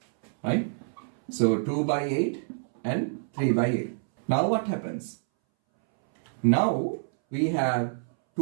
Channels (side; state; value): left; silent; 60 dB below the other